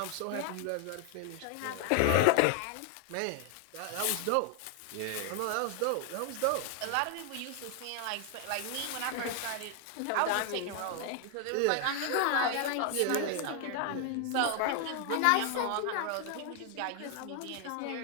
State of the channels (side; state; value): both; different; correlation 0.00